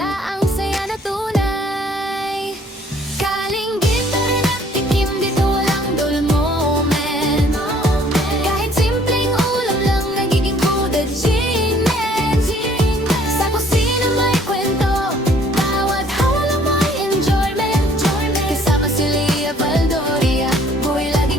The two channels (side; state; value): both; normal; correlation 0.59